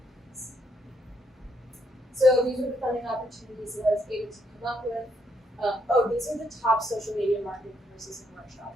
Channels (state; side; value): normal; both; correlation 0.74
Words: So these are the funding opportunities that I was able to come up with. These are the top social media marketing courses and